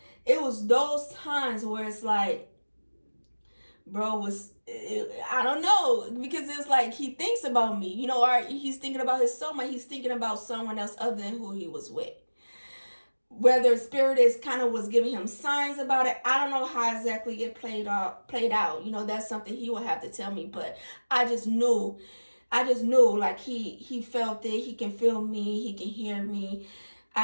It was those times where it's like, bro I don't know, because it's like he thinks about me, you know, or he's thinking about his soulmate, he's thinking about someone else other than who he was with. Whether spirit is kind of was giving him signs about it, I don't know how exactly it played out. You know, that's something he would have to tell me, but I just knew like he felt it, he can feel me, he can hear me.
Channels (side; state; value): both; inverted; correlation -1.00